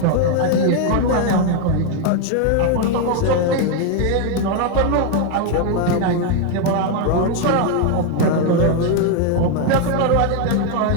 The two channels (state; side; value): different; both; correlation 0.01